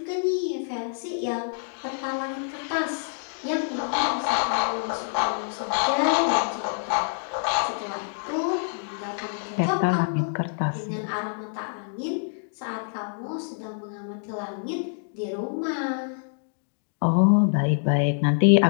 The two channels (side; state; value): right; silent; digital silence